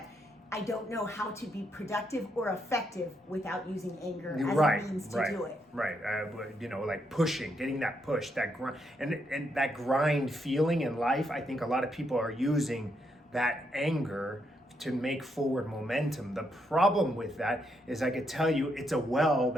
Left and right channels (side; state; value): both; normal; correlation 0.78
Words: I don't know how to be productive or effective without using anger as a means to do it. Right. Like pushing, getting that push, that grind, and that grind feeling in life. I think a lot of people are using that anger to make forward momentum. The problem with that is I could tell you it's a well